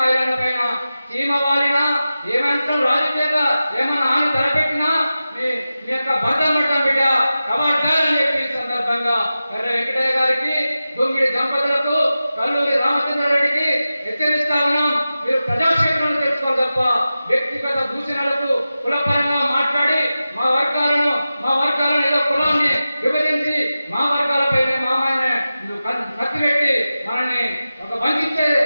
ఐలాండ్ పైన చీమ వాలినా ఏమంటాం రాజకీయంగా ఏమన్నా ఆమె తలపెట్టినా మీ యొక్క భర్త పడతాం బిడ్డ కవాడ్డాలని చెప్పి సందర్భంగా ఎర్ర వెంకటయ్య గారికి, గుంగిడి దంపతులకు, కల్లూరి రామచంద్రారెడ్డికి హెచ్చరిస్తా ఉన్నాం. మీరు ప్రజాక్షేత్రంలో తెచ్చుకోవాలి తప్ప వ్యక్తిగత దూషణలకు కులపరంగా మాట్లాడి మా వర్గాలను ఏదో కులాన్ని విభజించి మా వర్గాలపైన మామయ్యనే కత్తి పెట్టి మనల్ని ఒక వంచే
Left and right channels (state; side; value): inverted; both; correlation -0.94